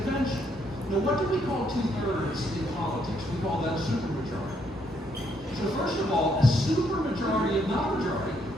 Now, what do we call 2/3 in politics? We call that a supermajority. So first of all, a supermajority, not majority,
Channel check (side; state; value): both; normal; correlation 0.72